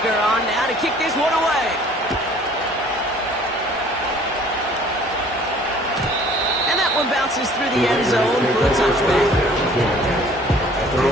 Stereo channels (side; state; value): both; normal; correlation 0.53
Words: on now to kick this one away. And that one bounces through the end zone for a touchback.